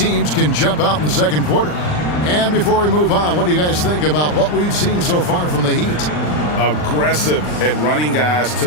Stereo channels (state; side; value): late; right; 39 ms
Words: can jump out in the second quarter. And before we move on, what do you guys think about what we've seen so far from the Heat? Aggressive at running guys to